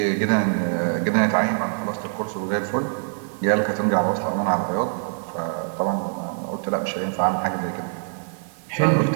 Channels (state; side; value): silent; left; digital silence